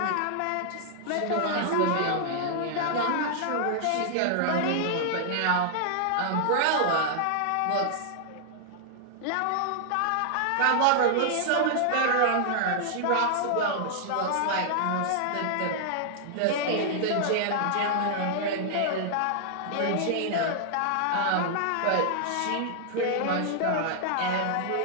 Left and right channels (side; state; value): both; different; correlation -0.01